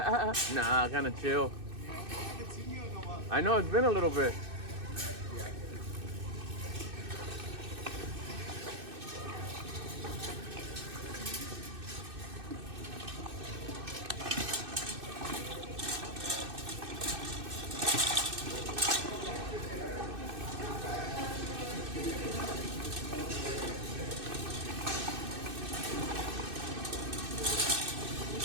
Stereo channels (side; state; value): left; late; 2.6 ms